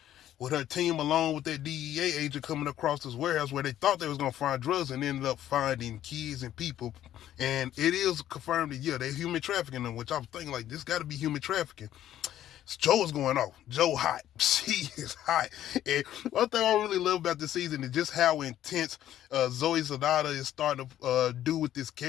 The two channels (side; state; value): right; quieter; 12.0 dB